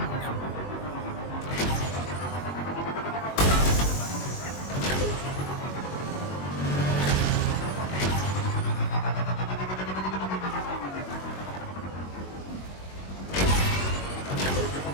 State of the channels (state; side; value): late; right; 21 ms